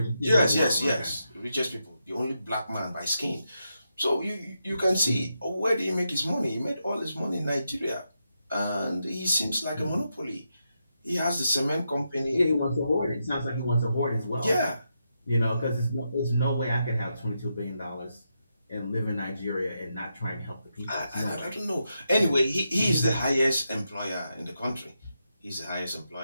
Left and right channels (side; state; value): both; inverted; correlation -0.84